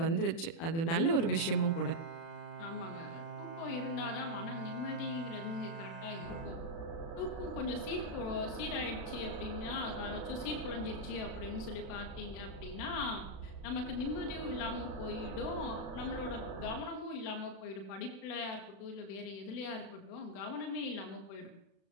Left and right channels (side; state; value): right; late; 36 ms